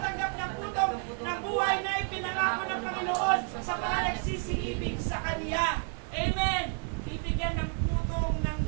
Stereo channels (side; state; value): left; quieter; 39.2 dB